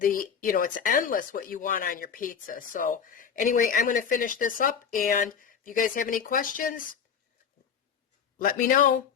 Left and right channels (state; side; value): quieter; right; 7.1 dB